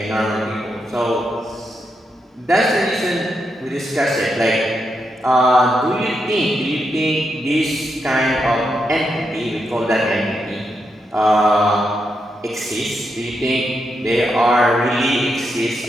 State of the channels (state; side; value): normal; both; correlation 0.83